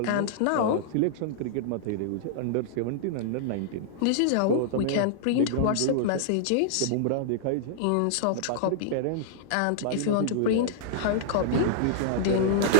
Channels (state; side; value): different; both; correlation -0.02